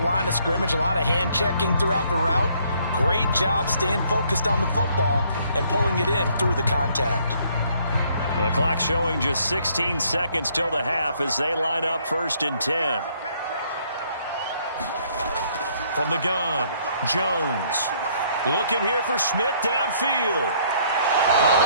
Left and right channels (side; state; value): both; inverted; correlation -0.65